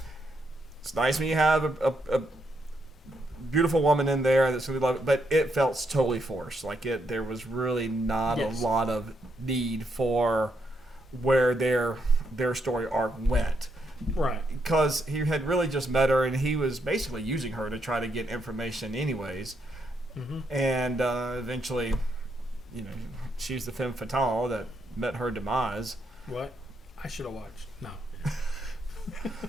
it's nice when you have a beautiful woman in there that's gonna be loved, but it felt totally forced. Like there was really not a lot of need for where their story arc went. Right. Because he had really just met her, and he was basically using her to try to get information anyways. Mm-hmm. And eventually, she's the femme fatale that met her demise. What? I should have watched. No.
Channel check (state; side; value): normal; both; correlation 0.78